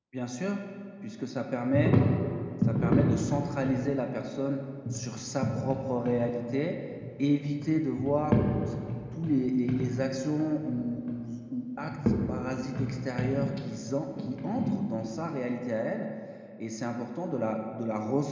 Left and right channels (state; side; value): identical; both; correlation 1.00